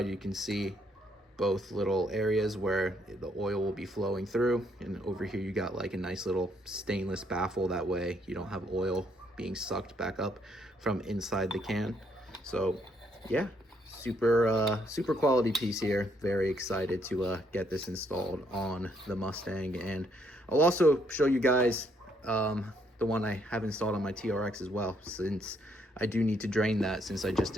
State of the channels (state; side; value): normal; both; correlation 0.71